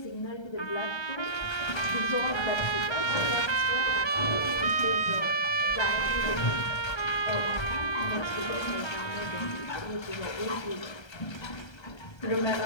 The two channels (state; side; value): late; right; 1.3 ms